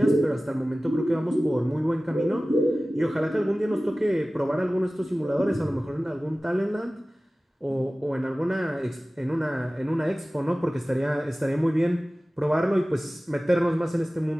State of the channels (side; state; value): both; normal; correlation 0.97